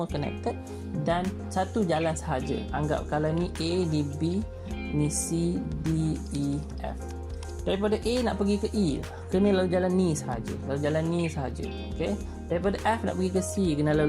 connected. Dan satu jalan sahaja. Anggap kalau ni A, ni B, ni C, D, E, F. Daripada A nak pergi ke E, kena lalu jalan ni sahaja. Lalu jalan ni sahaja. Okey. Daripada F nak pergi ke C, kena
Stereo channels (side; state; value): both; identical; correlation 1.00